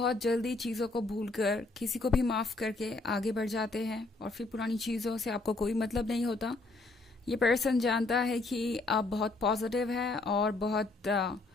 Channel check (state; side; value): quieter; right; 3.3 dB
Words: जल्दी चीज़ों को भूलकर किसी को भी माफ़ करके आगे बढ़ जाते हैं और फिर पुरानी चीज़ों से आपको कोई मतलब नहीं होता। ये पर्सन जानता है कि आप बहुत पॉजिटिव हैं और बहुत